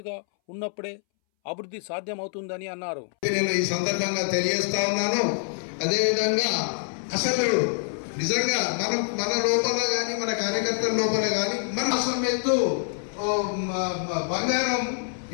ఉన్నప్పుడే అభివృద్ధి సాధ్యమవుతుందని అన్నారు. నేను ఈ సందర్భంగా తెలియజేస్తా ఉన్నాను. అదేవిధంగా అసలు నిజంగా మన లోపల కానీ మన కార్యకర్తల లోపల కానీ మన అసలు బంగారం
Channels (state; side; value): silent; right; 61 dB below the other